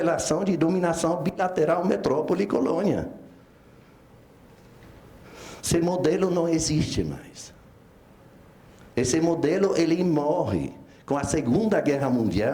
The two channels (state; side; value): identical; both; correlation 1.00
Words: de dominação bilateral metrópole-colônia. Esse modelo não existe mais. Esse modelo, ele morre com a Segunda Guerra